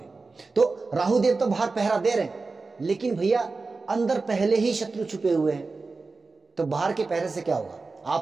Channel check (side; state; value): left; quieter; 3.9 dB